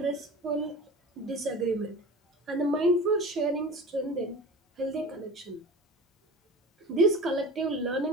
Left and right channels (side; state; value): both; normal; correlation 0.35